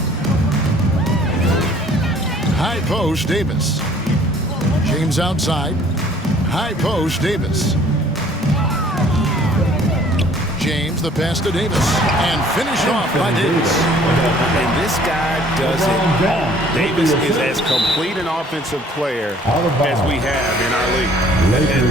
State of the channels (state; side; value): normal; both; correlation 0.56